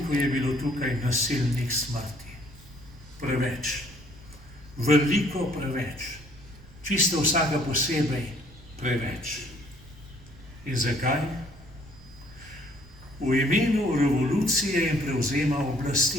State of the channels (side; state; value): right; noise; rumble, 22 dB below the sound